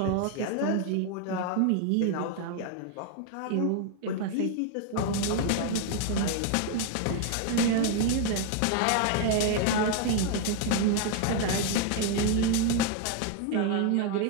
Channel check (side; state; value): both; different; correlation 0.01